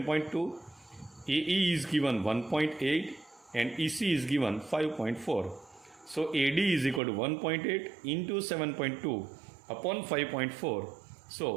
AE is given 1.8 and EC is given 5.4. So AD is equal to 1.8 into 7.2 upon 5.4.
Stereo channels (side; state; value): left; drops out; at 7.0 s